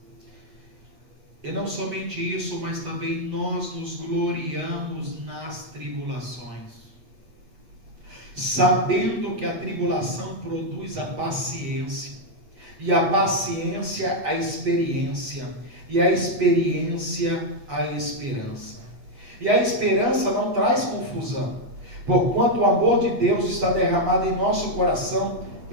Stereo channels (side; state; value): left; late; 7.9 ms